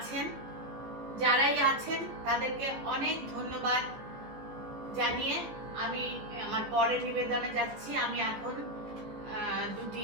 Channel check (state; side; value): late; left; 14 ms